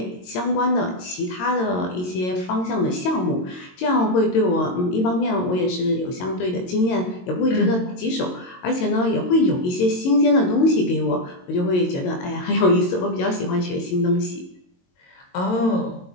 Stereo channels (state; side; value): late; right; 22 ms